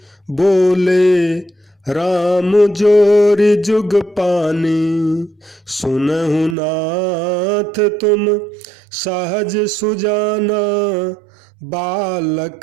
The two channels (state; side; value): drops out; left; at 6.6 s